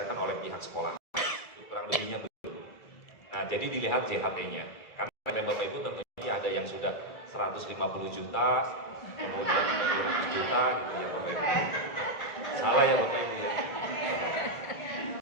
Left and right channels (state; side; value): late; right; 1.7 ms